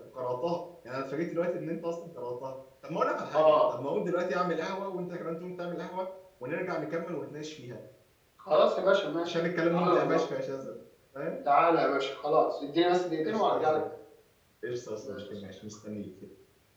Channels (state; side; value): identical; both; correlation 1.00